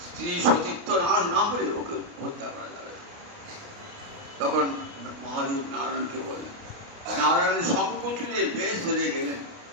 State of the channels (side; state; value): left; late; 29 ms